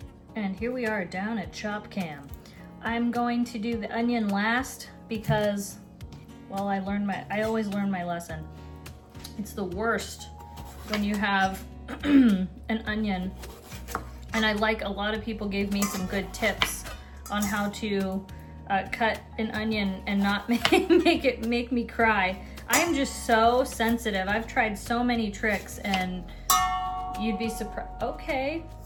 And here we are down at Chop Cam. I'm going to do the onion last because, well, I always learn my lesson. It's the worst when you have an onion. And a lot of people gave me some good tips on how to cut an onion and not make me cry. I am just so sensitive. I've tried so many tricks and you'd be surprised. Okay,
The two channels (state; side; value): identical; both; correlation 1.00